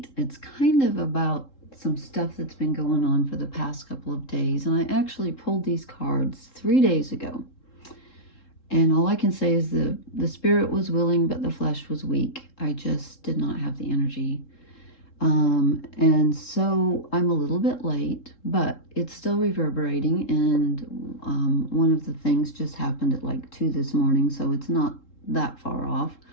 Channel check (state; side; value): late; right; 3.7 ms